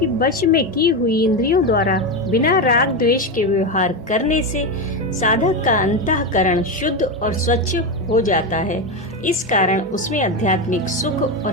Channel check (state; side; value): normal; both; correlation 0.13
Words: वश में की हुई इंद्रियों द्वारा बिना राग द्वेष के व्यवहार करने से साधक का अंतःकरण शुद्ध और स्वच्छ हो जाता है। इस कारण उसमें आध्यात्मिक सुख